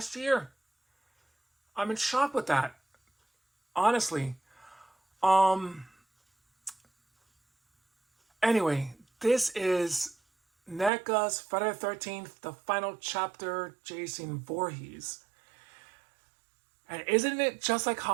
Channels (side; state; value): left; drops out; at 10.9 s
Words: year. I'm in shock with that, honestly. Um, anyway, this is Neca's Friday the 13th, the final chapter, Jason Voorhees. And isn't it just like